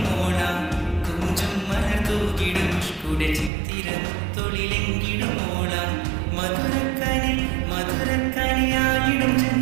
മോള കൊഞ്ചും മലർത്തൂകിടും ഇഷ്കുടെ ചിത്തിരം തൊളിലെങ്കിലും മോള മധുരക്കനി മധുരക്കനിയായിടും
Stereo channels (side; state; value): left; drops out; at 3.5 s